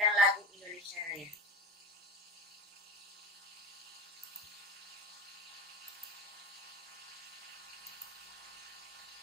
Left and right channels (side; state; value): both; normal; correlation 0.26